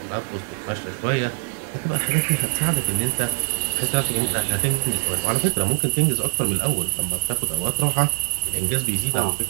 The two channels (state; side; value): silent; left; 58 dB below the other